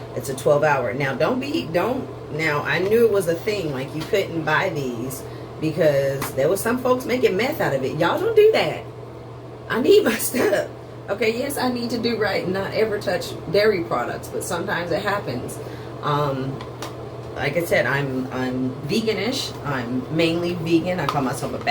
It's a 12-hour. Now now I knew it was a thing, like you couldn't buy these because there was some folks making meth out of it. Y'all don't do that. I need my stuff. Okay, yes, I need to do right and not ever touch dairy products, but sometimes it happens. Like I said, I'm veganish. I'm mainly vegan. I call myself a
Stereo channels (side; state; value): both; identical; correlation 1.00